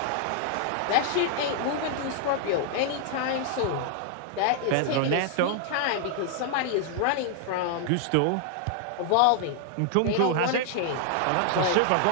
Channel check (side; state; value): both; different; correlation 0.00